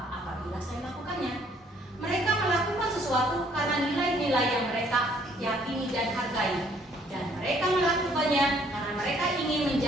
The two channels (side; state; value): both; normal; correlation 0.63